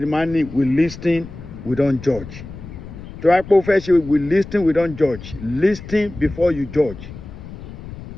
máa ń ní we listen we don't judge. Tó wá pé ó fẹ́ ṣe we listen we don't judge. Listen before you judge.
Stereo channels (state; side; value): noise; left; rumble, 13 dB below the sound